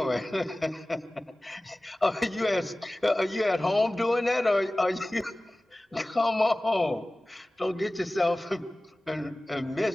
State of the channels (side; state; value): both; normal; correlation 0.98